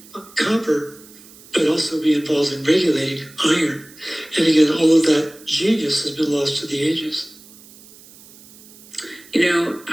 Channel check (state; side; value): noise; right; hiss, 22 dB below the sound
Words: copper, but also be involved in regulating iron. And again, all of that genius has been lost to the ages. You